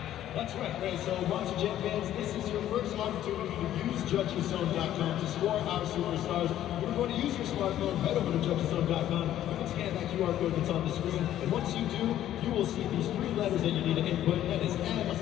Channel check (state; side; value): quieter; right; 12.2 dB